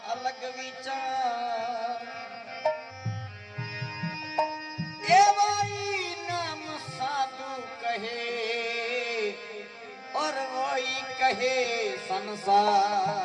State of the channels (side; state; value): both; identical; correlation 1.00